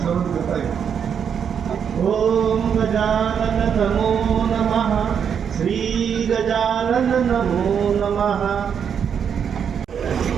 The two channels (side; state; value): left; quieter; 7.6 dB